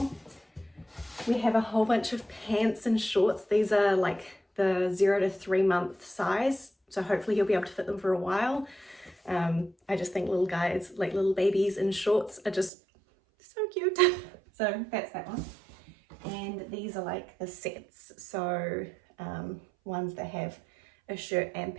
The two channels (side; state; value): left; drops out; at 12.7 s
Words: We have a whole bunch of pants and shorts. These are like the 0 to 3 month size, so hopefully he'll be able to fit them for a while. I just think little guys, like little babies in shorts, are just so cute. So that's that one. And these are like the sets, so ones that have a shirt and